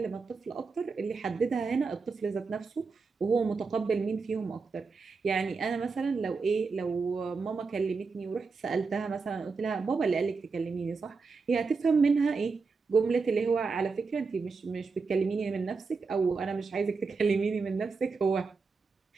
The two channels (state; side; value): quieter; left; 4.6 dB